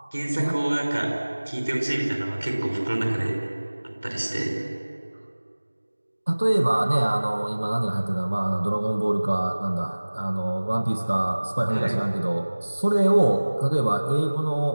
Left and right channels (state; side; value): inverted; both; correlation -1.00